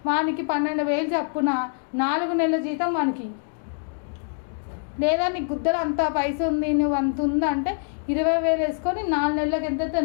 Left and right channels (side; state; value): right; silent; digital silence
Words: వానికి 12,000 చెప్పున 4 నెలల జీతం వానికి. లేదా నీకు గుద్దలు అంత పైసా ఉంది, నువ్వు అంత ఉందంటే 20,000 వేసుకొని 4 నెలలకు ఎంత